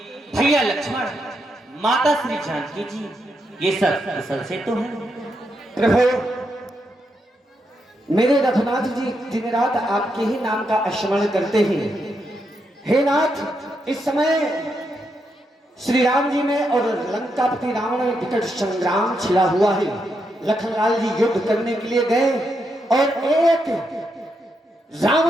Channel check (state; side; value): normal; both; correlation 0.82